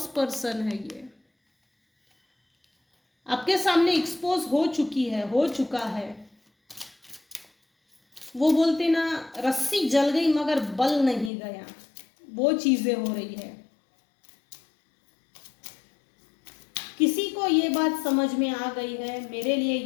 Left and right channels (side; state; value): right; drops out; at 11.3 s